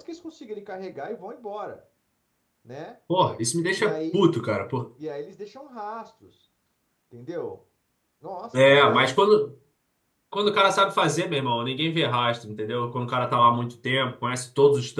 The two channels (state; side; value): identical; both; correlation 1.00